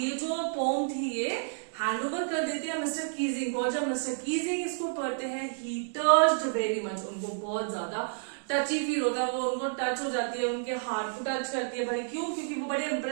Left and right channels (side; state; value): left; silent; digital silence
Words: जो पोम थी ये हैंडओवर कर देती है मिस्टर कीजिंग को। और जब मिस्टर कीजिंग इसको पढ़ते हैं, ही टच्ड वेरी मच, उनको बहुत ज्यादा टची फील होता है, वो उनको टच हो जाती है, उनके हार्ट को टच करती है। भाई क्यों? क्योंकि वो बड़े